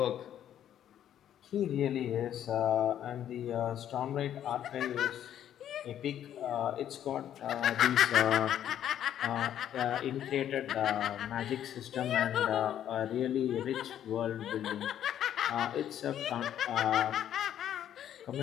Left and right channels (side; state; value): right; quieter; 10.6 dB